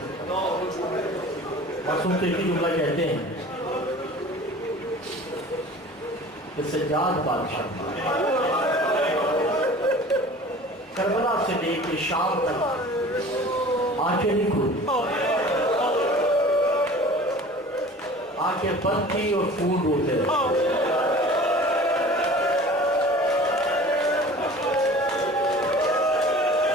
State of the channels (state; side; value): normal; both; correlation 0.43